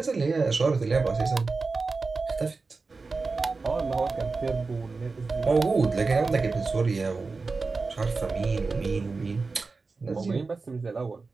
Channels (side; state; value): left; quieter; 4.1 dB